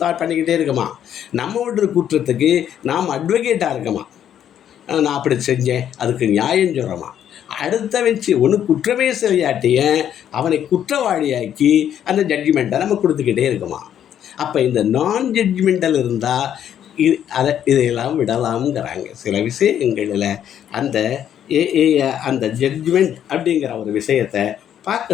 பண்ணிக்கிட்டே இருக்கமா. நம்ம விடுற குற்றத்துக்கு நாம் அட்வொகேட்டாக இருக்கமா. நான் அப்படி செஞ்சேன், அதுக்கு நியாயம் சொல்கிறோமா. அடுத்த வச்சு ஒன்று குற்றமே செய்யாட்டிய அவனை குற்றவாளியாக்கி அந்த ஜட்ஜ்மெண்ட்டை நம்ம கொடுத்துக்கிட்டே இருக்குமா. அப்போ இந்த நான் ஜட்ஜ்மெண்டல் இருந்தால் இதையெல்லாம் விடலாம்ங்கிறாங்க. சில விஷயங்களில் அந்த ஜட்ஜ்மெண்ட் அப்படிங்கிற ஒரு விஷயத்தை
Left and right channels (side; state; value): right; quieter; 9.9 dB